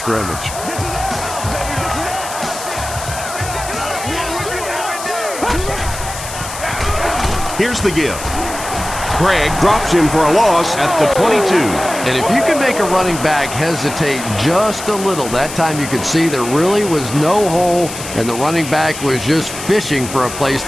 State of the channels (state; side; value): noise; left; hiss, 10 dB below the sound